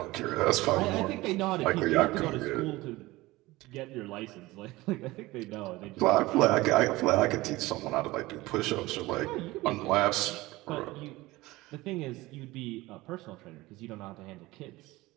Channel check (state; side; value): quieter; left; 19.6 dB